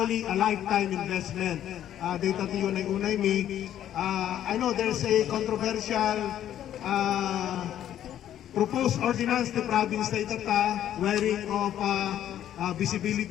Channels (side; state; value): right; quieter; 11.1 dB